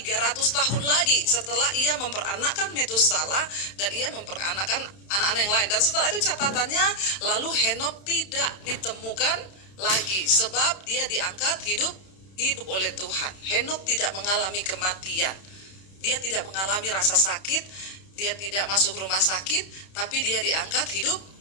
tahun lagi setelah ia memperanakkan Metusalah dan ia memperanakkan anak-anak yang lain. Dan setelah itu catatannya, lalu Henokh tidak ditemukan lagi sebab dia diangkat hidup oleh Tuhan. Henokh tidak mengalami kematian, dia tidak mengalami rasa sakit, dia tidak masuk rumah sakit, tapi dia diangkat hidup.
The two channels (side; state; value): right; late; 31 ms